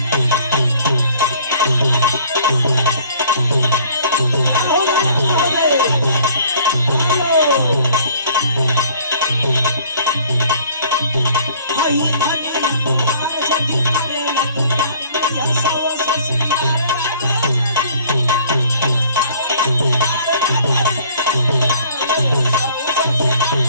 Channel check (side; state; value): both; inverted; correlation -0.53